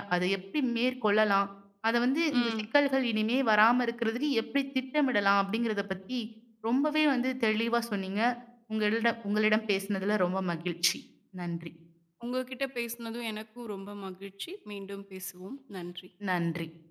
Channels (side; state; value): both; identical; correlation 1.00